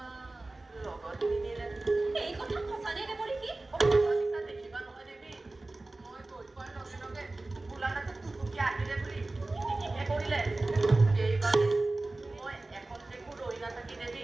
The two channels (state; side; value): quieter; left; 3.0 dB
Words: লগত নিনিলে। এই কথা সঁচানে দেৱঋষি? সঁচা দেখিবা নহয় দেৱী, মই গৈ পোৱাৰ লগে লগে বোলানাথে টুটুকি আহিলে বুলি কিটিকিহে কৰিলে। সেইবাবে মই এখন দেখো ৰৈ নাথাকি দেৱী